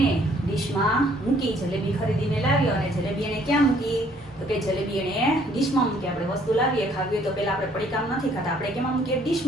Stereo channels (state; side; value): normal; both; correlation 0.63